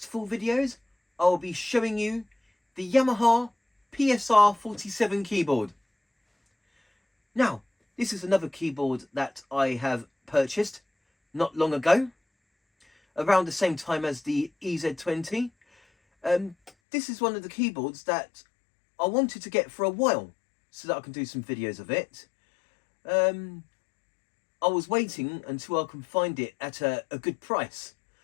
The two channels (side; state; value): right; drops out; at 16.7 s